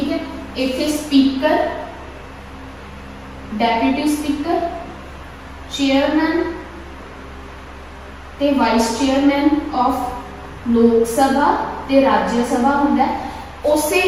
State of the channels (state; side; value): identical; both; correlation 1.00